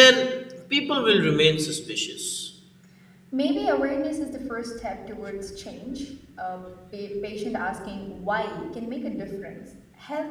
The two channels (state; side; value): identical; both; correlation 1.00